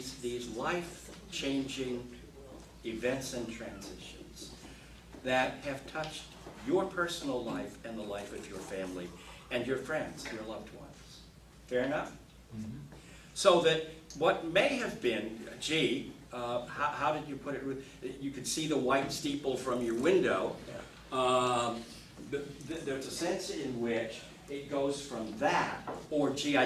life-changing events and transitions that have touched your personal life and the life of your family and your friends, your loved ones. Fair enough? Mm-hmm. So that what may have been, how did you put it? You could see the white steeple from your window. There's a sense in which it goes from that, or I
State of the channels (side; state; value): both; identical; correlation 1.00